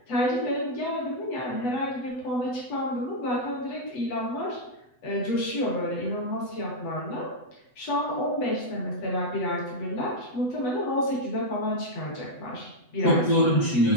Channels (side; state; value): right; late; 8.0 ms